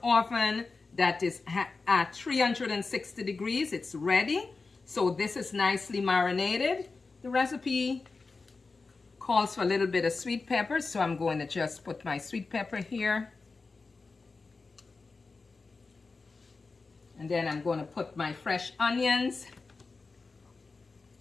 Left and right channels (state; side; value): quieter; right; 4.1 dB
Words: oven that is at 360 degrees. It's ready. So this is nicely marinated. The recipe calls for a little bit of sweet pepper, so I'm going to just put my sweet pepper here. And then I'm going to put my fresh onions,